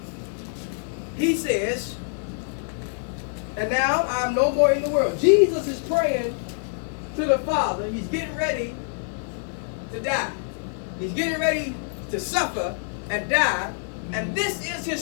He says, and now I'm no more in the world. Jesus is praying to the Father. He's getting ready to die. He's getting ready to suffer and die. And this is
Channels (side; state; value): right; silent; 61 dB below the other